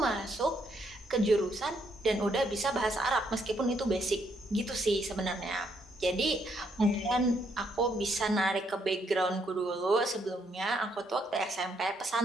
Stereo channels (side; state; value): both; normal; correlation 0.73